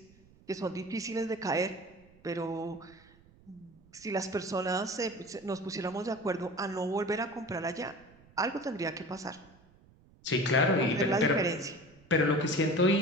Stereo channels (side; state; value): right; noise; rumble, 27 dB below the sound